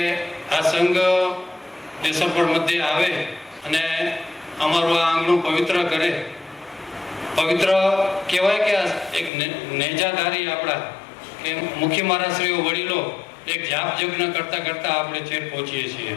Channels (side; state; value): right; drops out; at 9.3 s